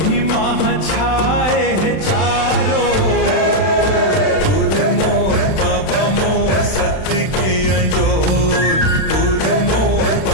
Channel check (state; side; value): late; right; 31 ms